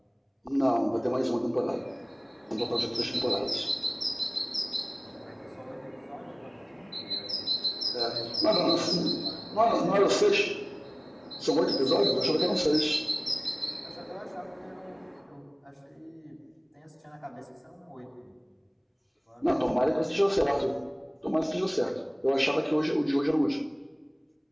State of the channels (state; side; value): identical; both; correlation 1.00